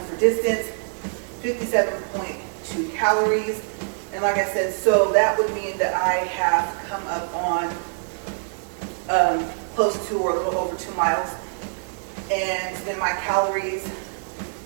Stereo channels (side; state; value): left; silent; 62 dB below the other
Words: distance, 57.2 calories. And like I said, so that would mean that I have come up on close to or a little over 2 miles. And then my calories